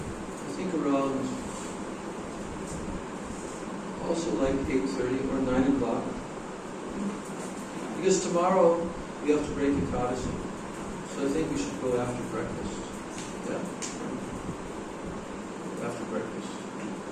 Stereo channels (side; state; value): both; identical; correlation 1.00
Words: think around also like 8:30 or 9 o'clock. Because tomorrow we have to break Ekadasi. So I think we should go after breakfast. Yeah. After breakfast.